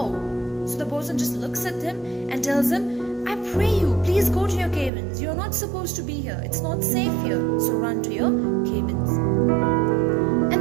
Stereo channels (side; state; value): left; drops out; at 4.9 s